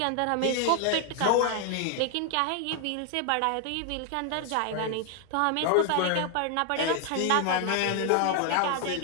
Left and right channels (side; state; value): both; different; correlation 0.00